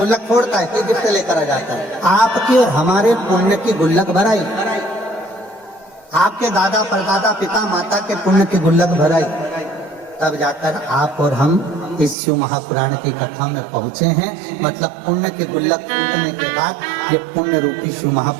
फोड़ता है, कोई गिफ्ट लेकर आ जाता है। आपके और हमारे पुण्य की गुल्लक भराई, आपके दादा परदादा पिता माता के पुण्य की गुल्लक भराई, तब जाकर आप और हम इस शिव महापुराण की कथा में पहुंचे हैं। मतलब पुण्य के गुल्लक फूटने के बाद ये पुण्य रूपी शिव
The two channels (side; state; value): left; drops out; at 12.2 s